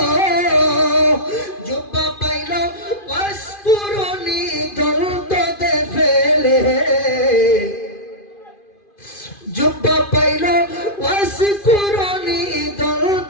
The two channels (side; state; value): right; late; 2.5 ms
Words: জুব্বা পাইল ওয়াসকুরুনি দলদে ফেলে, জুব্বা পাইল ওয়াসকুরুনি